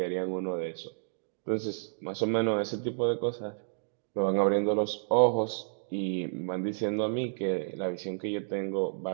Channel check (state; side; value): silent; left; digital silence